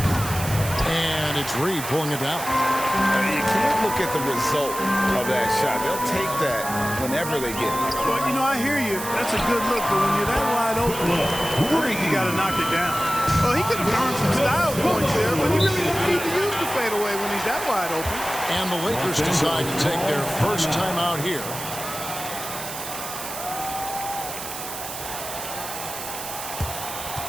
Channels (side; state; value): right; noise; hiss, 8 dB below the sound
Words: And it's Reed pulling it down. You can't look at the result of that shot. They'll take that whenever they get it. Well, you know, I hear you. That's a good look, but when you're that wide open, you got to knock it down. Well, he could have earned some style points there, but he really didn't need to use the fadeaway when he's that wide open. And the Lakers decide to take their first time out here.